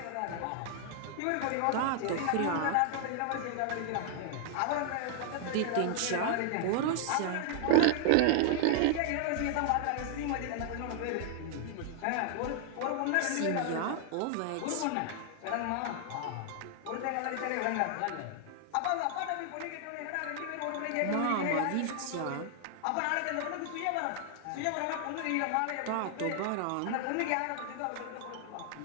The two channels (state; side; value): different; both; correlation -0.01